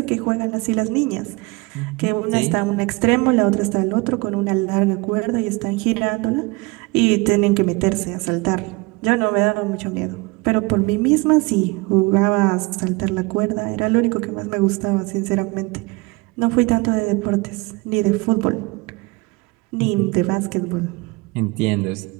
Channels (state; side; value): quieter; left; 25.5 dB